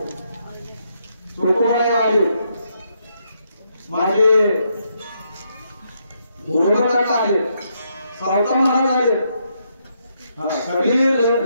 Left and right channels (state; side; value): inverted; both; correlation -0.77